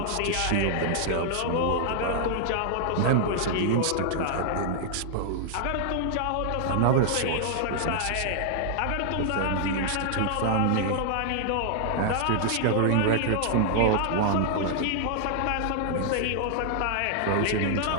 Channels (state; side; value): different; both; correlation -0.01